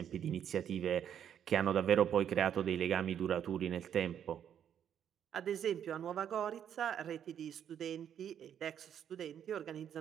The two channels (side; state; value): left; quieter; 9.2 dB